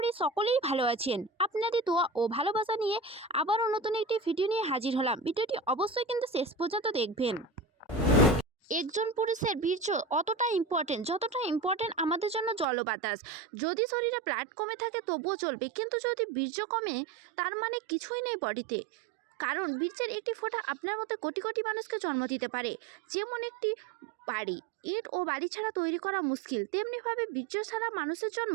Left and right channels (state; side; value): drops out; left; at 12.7 s